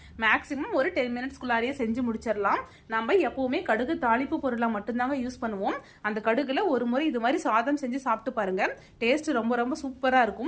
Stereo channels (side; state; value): both; identical; correlation 1.00